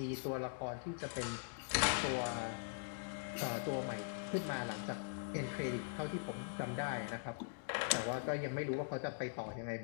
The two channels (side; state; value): right; silent; digital silence